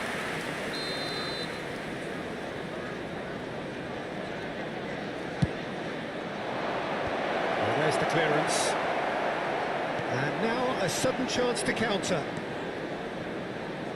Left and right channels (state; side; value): identical; both; correlation 1.00